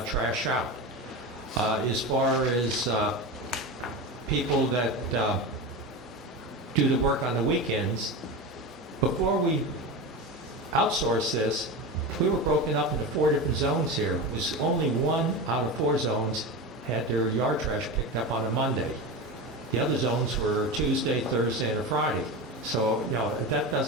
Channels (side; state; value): both; normal; correlation 0.24